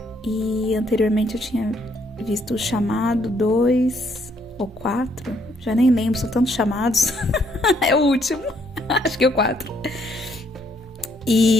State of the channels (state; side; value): normal; both; correlation 0.70